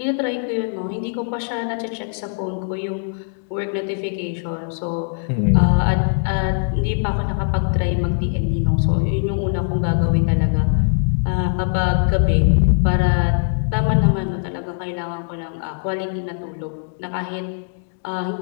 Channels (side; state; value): right; silent; digital silence